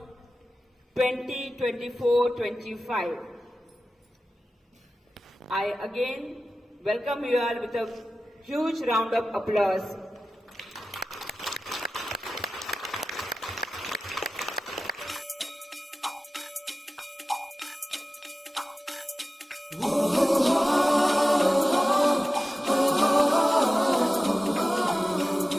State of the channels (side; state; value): both; normal; correlation 0.95